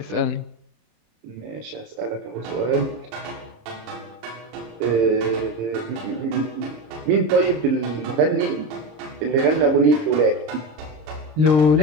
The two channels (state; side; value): late; left; 26 ms